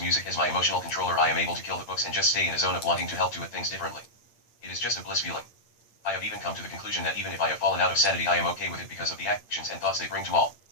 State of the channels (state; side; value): late; right; 8.8 ms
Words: music as my emotional controller, I am able to kill the books and just stay in a zone of wanting to help do it things differently. It is just a bliss feeling. I have even come to the conclusion that even if I have fallen out of sanity, I am okay with it because of the actions and thoughts they bring to all.